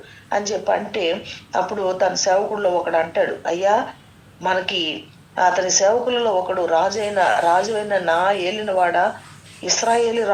అని చెప్పి అంటే, అప్పుడు తన సేవకుల్లో ఒకడు అంటాడు, అయ్యా మనకి అతని సేవకులలో ఒకడు రాజువైన నా ఏలినవాడ, ఇశ్రాయేలీ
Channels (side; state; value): both; identical; correlation 1.00